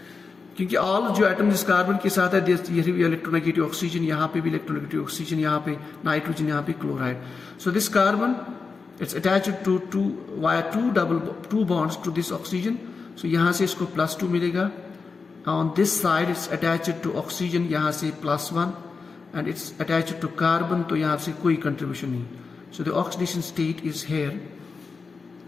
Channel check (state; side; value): quieter; right; 4.7 dB